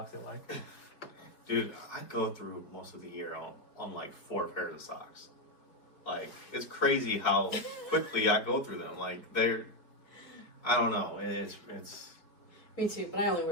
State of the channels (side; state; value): right; late; 4.7 ms